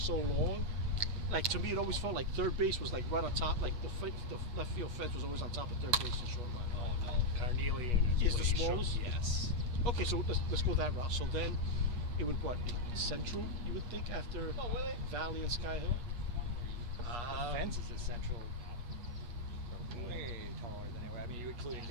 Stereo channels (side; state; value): left; late; 8.3 ms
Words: long. Like to me, it always felt like third base was like right on top. Like the left field fence was always on top of third base and short line. Oh no, Carnelian Is the way short. smallest? Yes. Okay, so let's go that route. So then, it would what be Central? You would think after Valley and Sky Hill. Fence is essential. Way taller than ever. I mean, you including